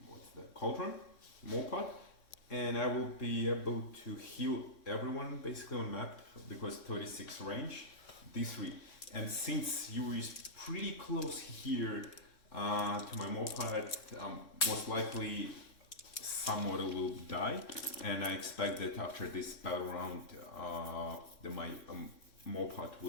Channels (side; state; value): right; late; 3.6 ms